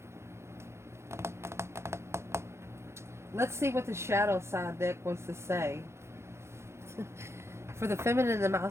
Let's see what the shadow side deck wants to say. For the feminine and the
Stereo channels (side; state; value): left; late; 0.13 ms